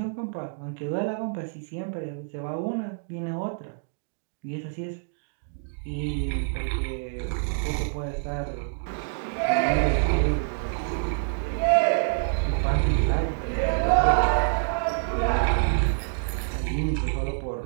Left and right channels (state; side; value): silent; left; digital silence